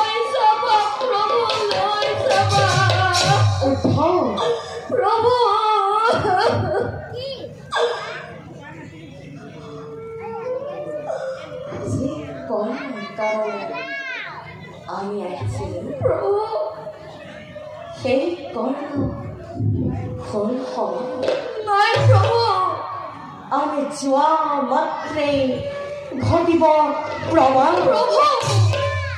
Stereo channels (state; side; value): identical; both; correlation 1.00